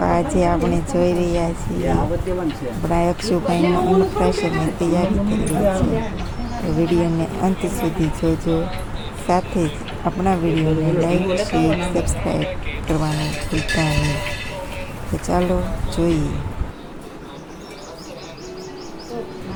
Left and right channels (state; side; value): identical; both; correlation 1.00